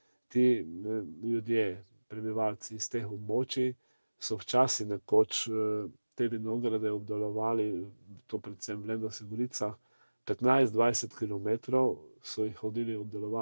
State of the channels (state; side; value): inverted; both; correlation -1.00